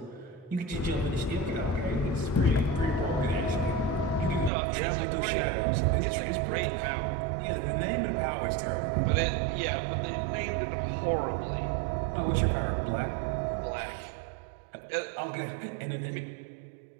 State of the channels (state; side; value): drops out; left; at 4.5 s